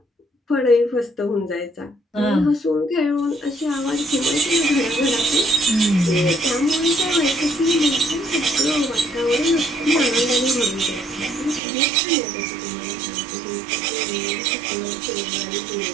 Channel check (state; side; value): drops out; left; at 11.6 s